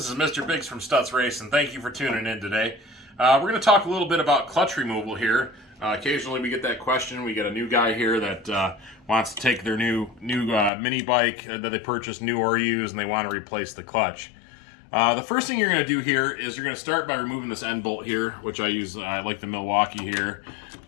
is Mr. Biggs from Stutz Race, and thank you for tuning in today. We're going to talk a little bit about clutch removal here. Occasionally we get that question. We get a new guy here that wants to take their new mini bike that they purchased new or used, and they want to replace the clutch. The first thing you're going to do here is you're going to start by removing this end bolt here, which I use, I like the Milwaukee here.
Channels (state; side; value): drops out; right; at 10.7 s